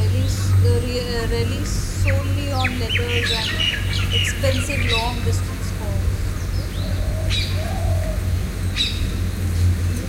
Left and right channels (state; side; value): identical; both; correlation 1.00